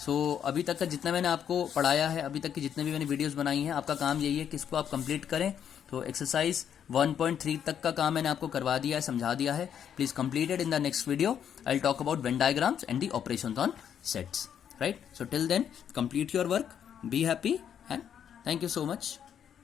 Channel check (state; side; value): quieter; right; 8.8 dB